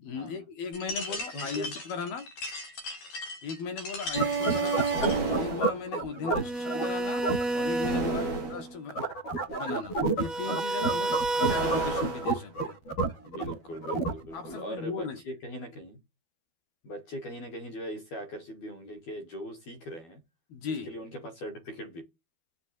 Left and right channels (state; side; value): late; right; 12 ms